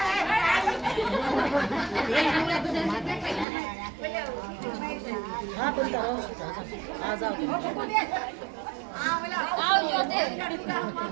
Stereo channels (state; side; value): drops out; left; at 3.5 s